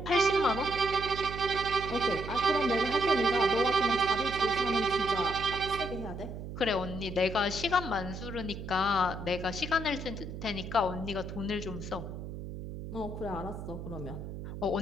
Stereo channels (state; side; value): noise; right; hum, 9 dB below the sound